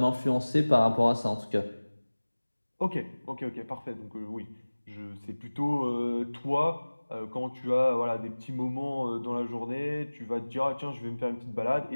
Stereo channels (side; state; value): both; inverted; correlation -1.00